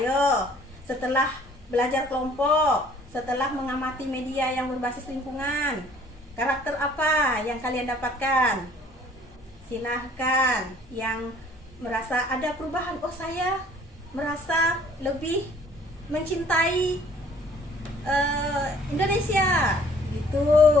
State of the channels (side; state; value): both; normal; correlation 0.56